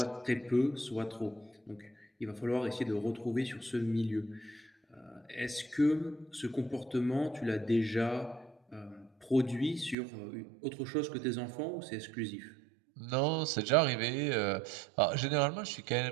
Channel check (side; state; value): left; drops out; at 10.0 s